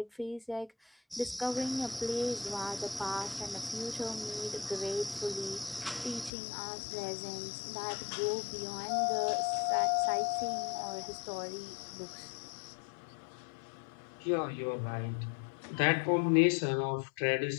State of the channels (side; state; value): right; drops out; at 6.3 s